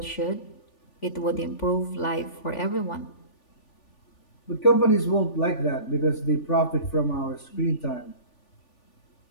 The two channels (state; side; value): late; right; 3.4 ms